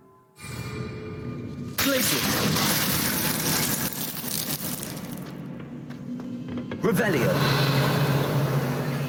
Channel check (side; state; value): both; identical; correlation 1.00